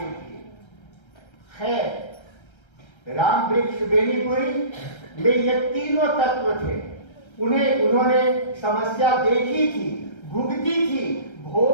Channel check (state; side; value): late; right; 1.3 ms